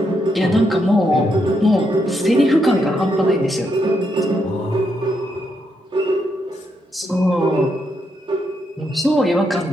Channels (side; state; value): both; normal; correlation 0.79